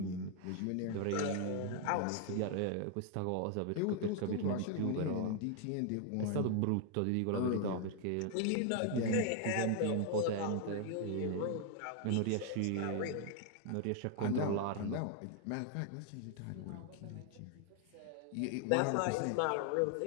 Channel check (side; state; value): both; different; correlation 0.00